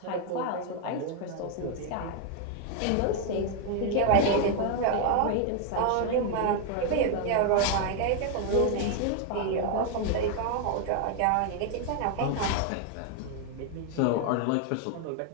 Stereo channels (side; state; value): both; different; correlation 0.01